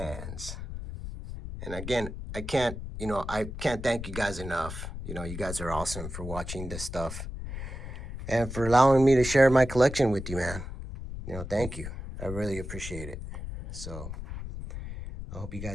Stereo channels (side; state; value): left; noise; rumble, 8 dB below the sound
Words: And again, I can't thank you guys enough. You know, you guys are awesome for watching this stuff and for allowing me to share my collection with you, man. You know, thank you. I really appreciate it. So I hope you